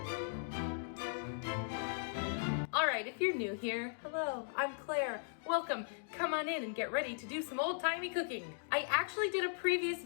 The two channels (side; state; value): right; silent; digital silence